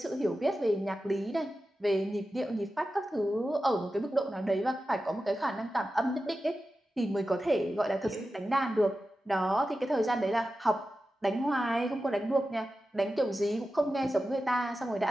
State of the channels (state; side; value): normal; both; correlation 0.93